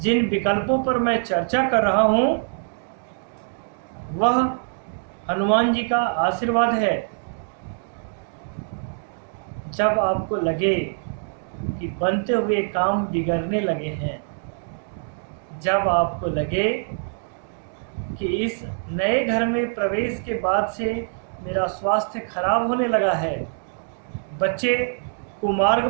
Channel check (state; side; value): silent; left; digital silence